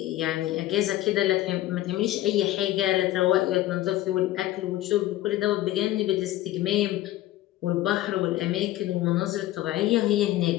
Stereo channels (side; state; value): right; quieter; 15.0 dB